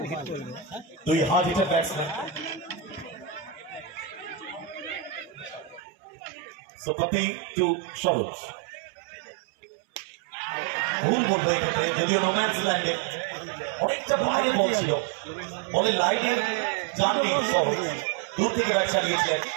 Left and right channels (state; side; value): drops out; left; at 5.8 s